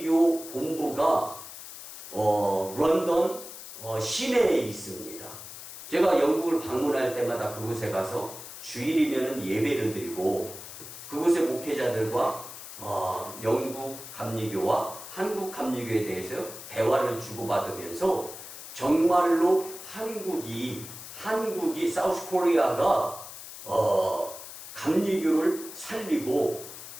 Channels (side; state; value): left; noise; hiss, 12 dB below the sound